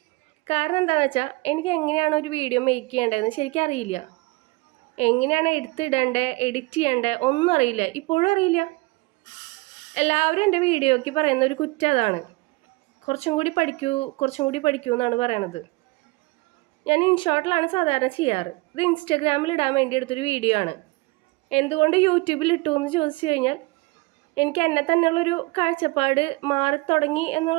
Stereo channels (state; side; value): quieter; left; 23.9 dB